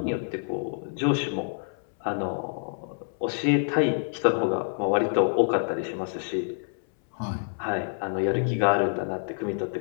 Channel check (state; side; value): silent; right; 60 dB below the other